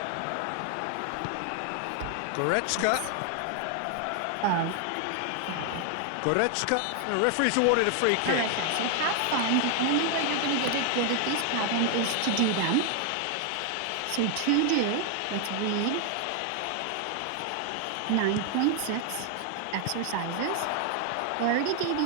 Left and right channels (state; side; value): different; both; correlation 0.00